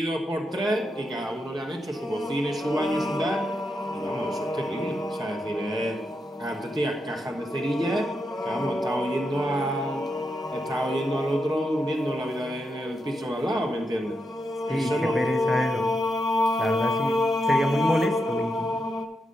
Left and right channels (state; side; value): normal; both; correlation 0.84